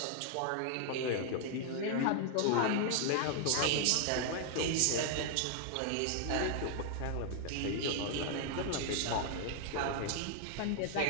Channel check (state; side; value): different; both; correlation 0.00